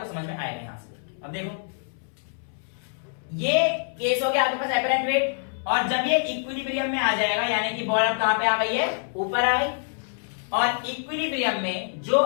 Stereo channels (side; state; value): right; silent; 61 dB below the other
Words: समझ में आएगा यहां से। अब देखो ये केस हो गया आपके पास एपरेंट वेट, और जब ये इक्विलिब्रियम में आ जाएगा यानी कि बॉल अब कहां पे आ गई है, ऊपर आ गई। और इक्विलिब्रियम में जो